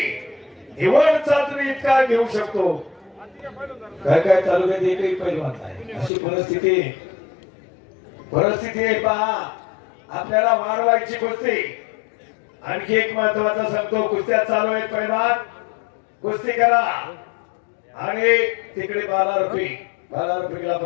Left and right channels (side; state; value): right; drops out; at 6.1 s